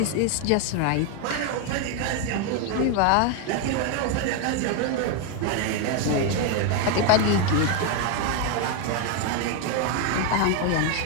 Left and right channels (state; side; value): different; both; correlation 0.01